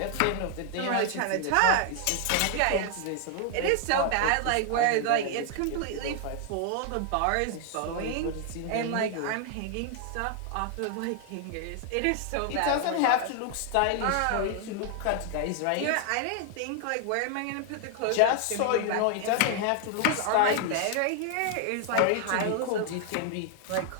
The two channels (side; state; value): both; different; correlation 0.00